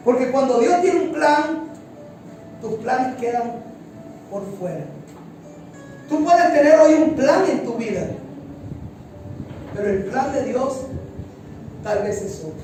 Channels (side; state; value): both; identical; correlation 1.00